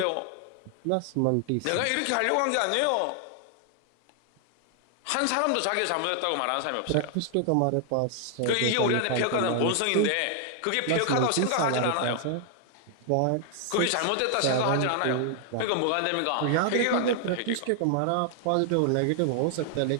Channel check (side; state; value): both; different; correlation 0.00